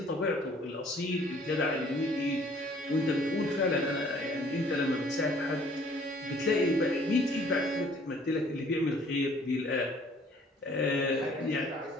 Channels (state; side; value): normal; both; correlation 0.57